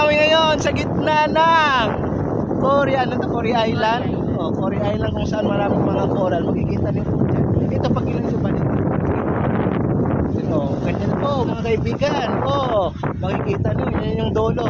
ngayon sa gitna ng Cory, Cory Island. Cory Island kung saan maraming mga coral. Makikita niyo po dyan. Ito pag ilan sa balik. Ganyan po mga kaibigan. Makikita niyo, yan yung dolo.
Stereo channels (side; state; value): both; identical; correlation 1.00